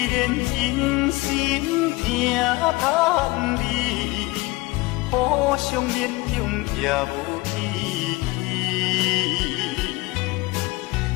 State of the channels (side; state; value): right; quieter; 22.2 dB